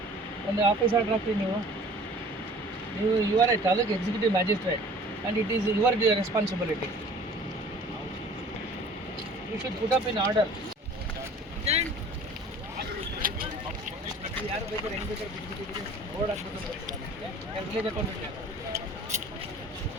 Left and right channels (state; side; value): normal; both; correlation 0.48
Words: ಒಂದು ಆಫೀಸ್ ಆರ್ಡರ್ ಹಾಕಿ ನೀವು you are a taluk executive magistrate and it is your responsibility. You should put up in order. ಯಾರು ಬೇಕಾದ್ರೆ ಹೆಂಗೆ ಬೇಕಾದ್ರೆ ಬಿಟ್ಬಿಟ್ಟಿದ್ದೀರಿ, ಬೋರ್ಡ್ ಹಾಕ್ಬಿಟ್ಟು ವಿಲೇಜ್ ಅಕೌಂಟ್